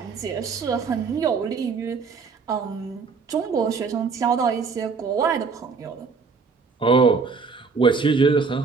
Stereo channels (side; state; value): left; quieter; 5.0 dB